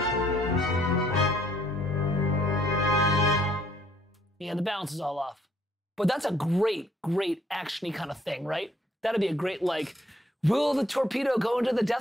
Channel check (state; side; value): normal; both; correlation 0.65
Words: Yeah, the balance is all off. But that's a great, great action-y kind of thing, right? That'd be a great, like, will the torpedo go into the